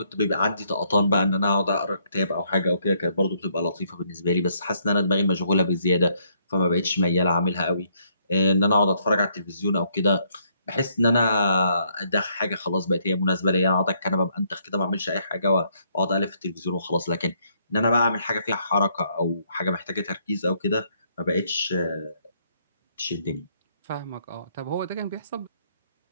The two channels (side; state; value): both; inverted; correlation -0.71